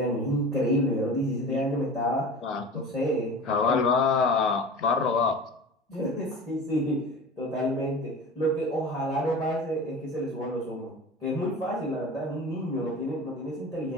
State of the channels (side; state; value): both; normal; correlation 0.35